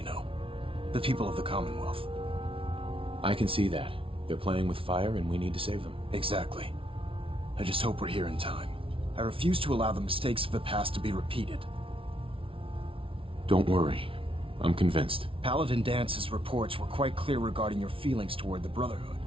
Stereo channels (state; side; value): late; left; 0.26 ms